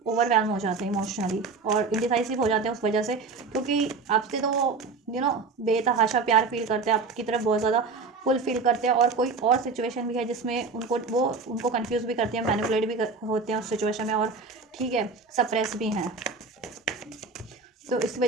ओवरवेलम हो जाते हैं इमोशनली, और इंडिसाइसिव हो जाते हैं उस वजह से, क्योंकि आपसे तो बेतहाशा प्यार फील करते हैं, आपकी तरफ बहुत ज़्यादा फुल फील करते हैं, और कोई और सिचुएशन भी है जिसमें उनको कंफ्यूज भी करते हैं, मैनिपुलेट भी होते हैं उस सिचुएशन में, और ठीक है, सप्रेस भी हैं, तो इस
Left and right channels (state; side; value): quieter; left; 4.4 dB